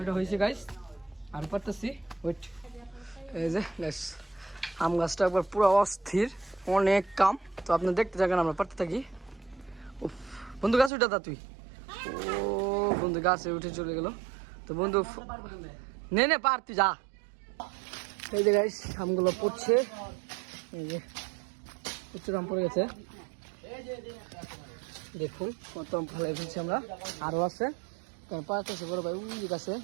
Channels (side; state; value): left; drops out; at 10.9 s